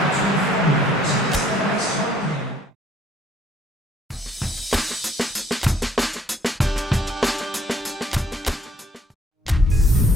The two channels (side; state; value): both; normal; correlation 0.63